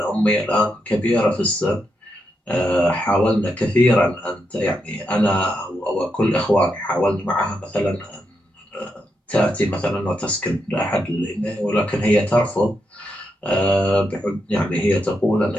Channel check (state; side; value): normal; both; correlation 0.83